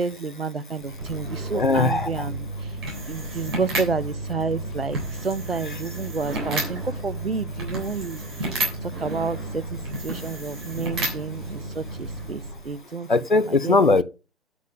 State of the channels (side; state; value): both; normal; correlation 0.34